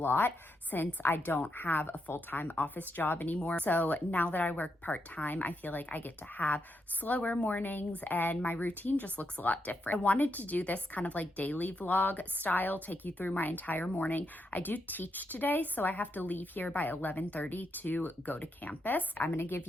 since I don't have a full-time office job anymore. So now that I work part-time, I feel like I get to have slower mornings and my routine just looks a lot different. I wanted to do this kind of like daily vlog style, take you through my entire morning. I do teach today, so I have to leave here by 11:30 to go to campus. I'm gonna give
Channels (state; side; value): normal; both; correlation 0.82